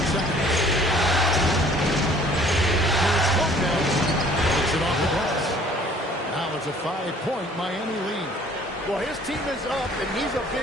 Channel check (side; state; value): both; normal; correlation 0.55